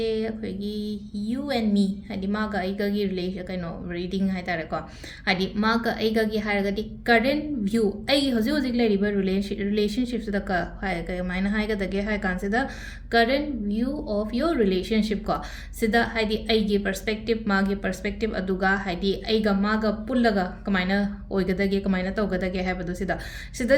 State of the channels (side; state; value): both; identical; correlation 1.00